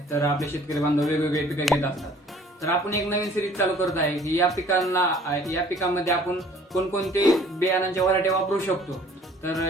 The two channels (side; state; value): both; normal; correlation 0.54